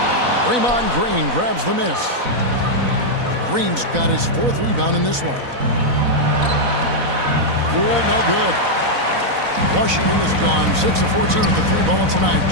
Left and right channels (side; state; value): left; late; 4.0 ms